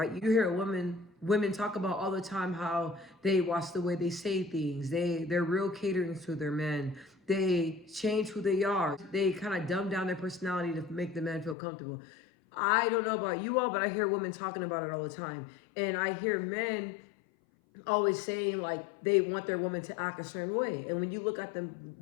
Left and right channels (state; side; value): drops out; right; at 11.6 s